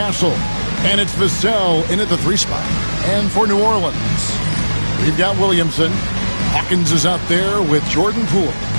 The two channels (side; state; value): both; inverted; correlation -1.00